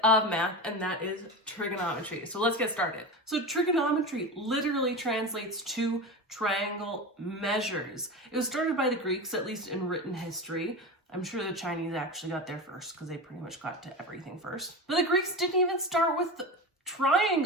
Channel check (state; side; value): normal; both; correlation 0.24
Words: of math, and that is trigonometry. So let's get started. So trigonometry literally translates to triangle measures. It was started by the Greeks, at least in written history. I'm sure the Chinese actually got there first because they pretty much got to everything first. But the Greeks didn't even start with